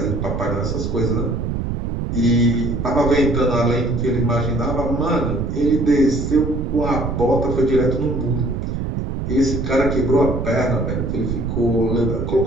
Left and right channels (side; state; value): right; noise; rumble, 3 dB below the sound